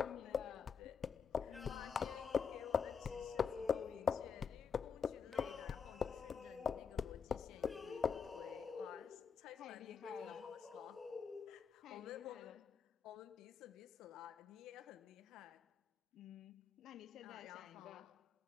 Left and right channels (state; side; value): quieter; right; 6.4 dB